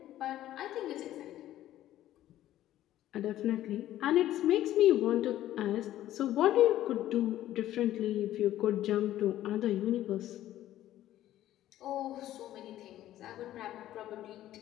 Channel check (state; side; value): quieter; right; 13.4 dB